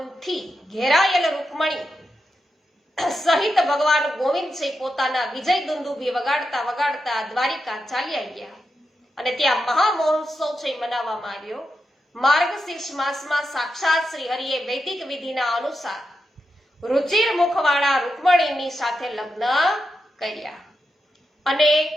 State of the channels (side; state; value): both; normal; correlation 0.87